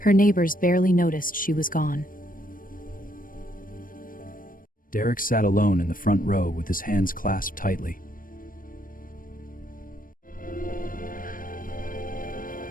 neighbors barely noticed she was gone. Derek sat alone in the front row with his hands clasped tightly.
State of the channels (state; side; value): late; right; 0.40 ms